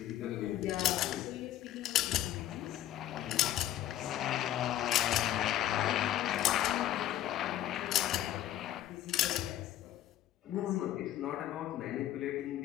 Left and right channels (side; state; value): right; quieter; 12.4 dB